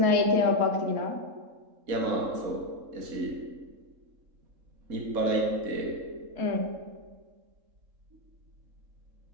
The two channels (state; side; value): late; left; 3.7 ms